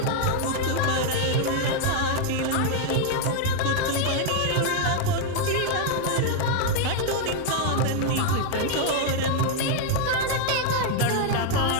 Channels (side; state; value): both; different; correlation 0.00